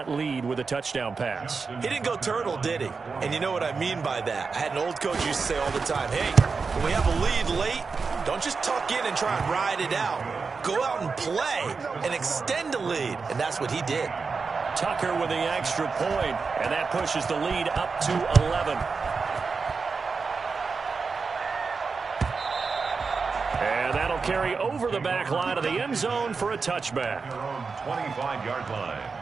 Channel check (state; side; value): quieter; left; 4.8 dB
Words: lead with a touchdown pass. He didn't go turtle, did he? And you know what I mean by that. I had an old coach used to say all the time, hey, when we have a lead late, don't just tuck in and try and ride it out. Go out and play and extend the lead. And that's what he did. Tucker with the extra point, and that pushes the lead up to 11. And that'll carry over the back line of the end zone for a touchback. 25-yard line.